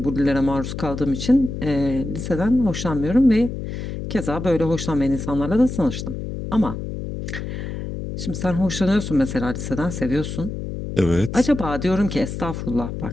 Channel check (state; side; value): noise; left; hum, 6 dB below the sound